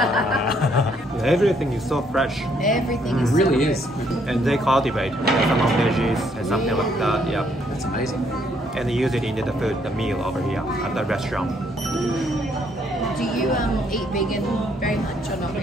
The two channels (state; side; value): normal; both; correlation 0.69